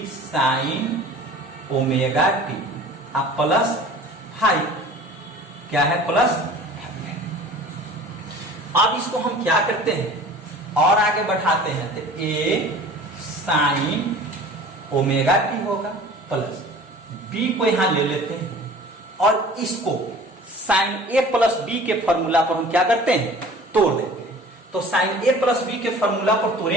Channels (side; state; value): both; normal; correlation 0.44